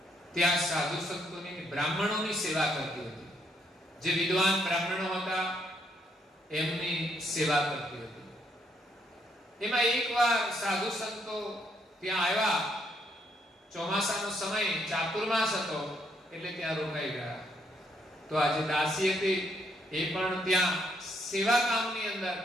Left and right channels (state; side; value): normal; both; correlation 0.72